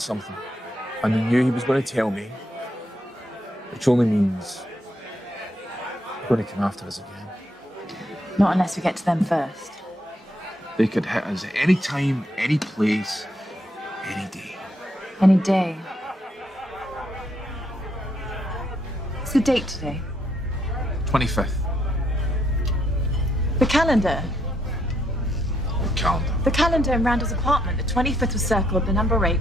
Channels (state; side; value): normal; both; correlation 0.75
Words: and they knew he was going to tell me, which only means they're going to come after us again. Not unless we get to them first. They could hit us at any time, any place, any day. Any day. What's the date today? 25th. The calendar. Calendar. The calendar in Randall's apartment. The 25th was circled, the number 8.